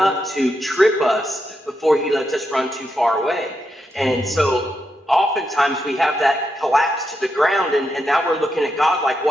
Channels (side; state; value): both; normal; correlation 0.84